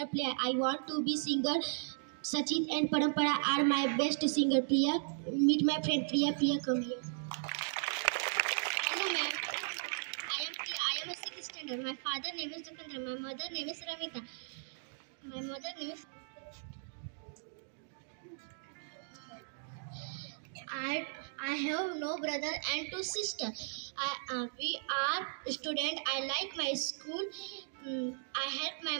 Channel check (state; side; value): silent; left; digital silence